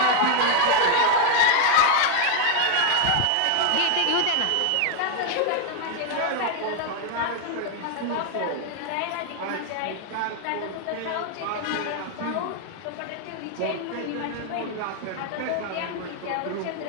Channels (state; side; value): different; both; correlation 0.01